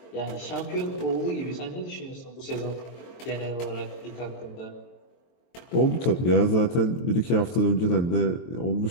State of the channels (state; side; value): late; right; 23 ms